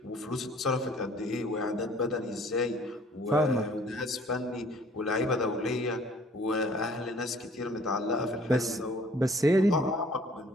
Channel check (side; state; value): both; normal; correlation 0.55